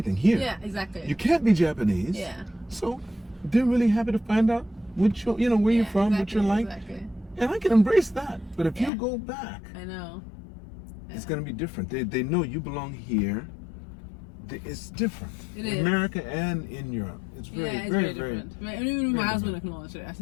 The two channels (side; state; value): right; drops out; at 8.9 s